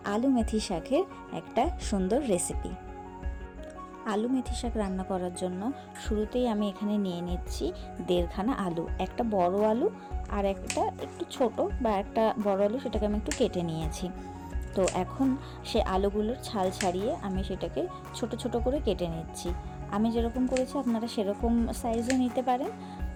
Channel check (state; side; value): identical; both; correlation 1.00